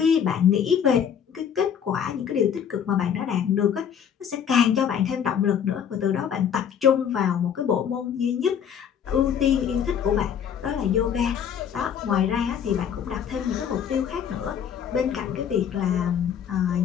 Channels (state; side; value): quieter; right; 8.3 dB